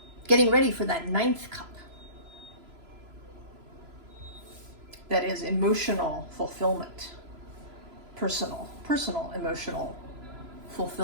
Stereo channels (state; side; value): late; left; 3.0 ms